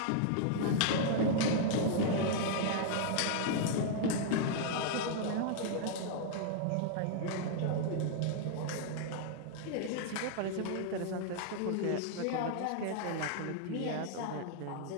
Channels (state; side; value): different; both; correlation -0.01